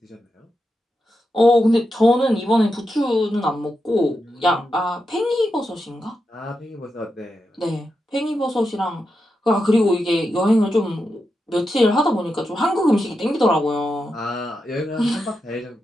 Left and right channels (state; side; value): normal; both; correlation 0.87